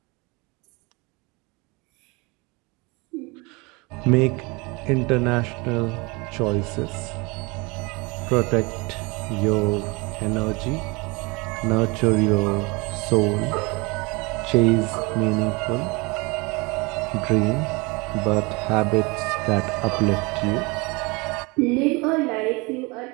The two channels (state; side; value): quieter; left; 26.8 dB